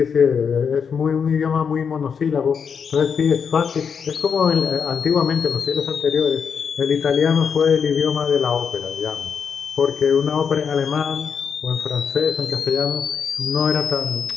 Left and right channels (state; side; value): quieter; right; 6.6 dB